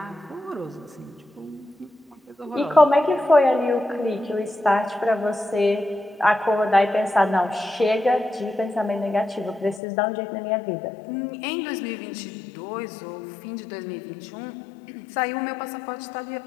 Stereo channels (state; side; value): drops out; right; at 9.8 s